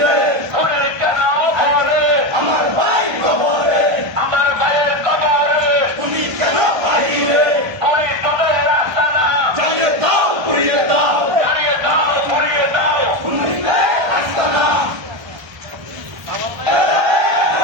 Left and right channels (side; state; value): left; late; 1.3 ms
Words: খুনি কেন ঘরে? আমার ভাই কবরে, আমার ভাইয়ের কবরে খুনি কেন বাহিরে, খুনি তোদের রাস্তা না। জ্বালিয়ে দাও, পুড়িয়ে দাও, জ্বালিয়ে দাও, পুড়িয়ে দাও। খুনিতে আস্তানা।